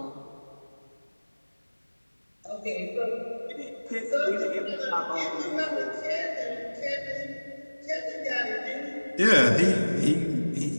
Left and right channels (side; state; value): both; inverted; correlation -1.00